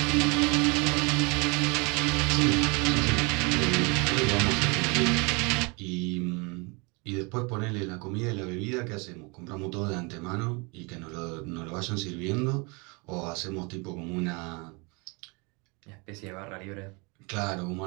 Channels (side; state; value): left; quieter; 29.7 dB